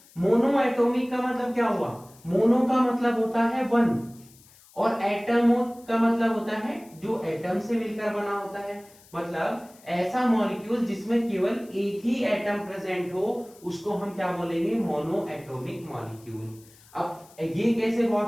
मोनो एटॉमिक का मतलब क्या हुआ, मोनो का मतलब होता है वन, और एटम का मतलब होता है जो एटम से मिलकर बना होता है, मतलब ऐसा मॉलिक्यूल जिसमें केवल एक ही एटम प्रेजेंट हो उसको हम क्या बोलेंगे, मोनो एटॉमिक मॉलिक्यूल। अब ये कैसे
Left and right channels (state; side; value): noise; left; hiss, 26 dB below the sound